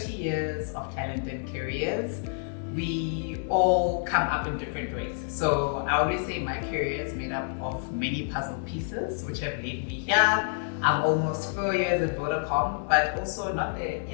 years of talent and careers, we all come up in different ways. So I always say my career is made up of many puzzle pieces, which have led me here. I'm almost 4 years at Vodacom, but also not the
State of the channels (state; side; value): silent; right; 59 dB below the other